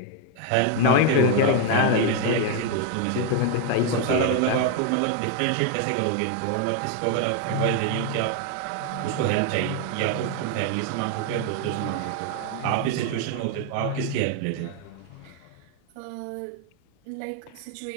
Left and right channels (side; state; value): both; different; correlation 0.01